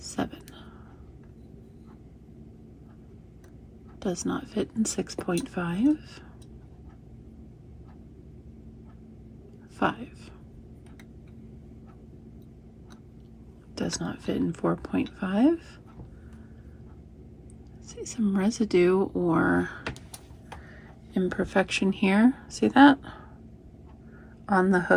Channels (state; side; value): identical; both; correlation 1.00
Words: Does not fit in 6.5. 5. Does not fit in 4.5. See some residue or imperfection here. See that? On the